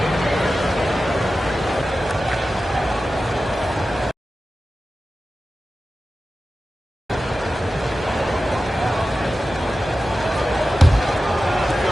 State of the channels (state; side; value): normal; both; correlation 0.94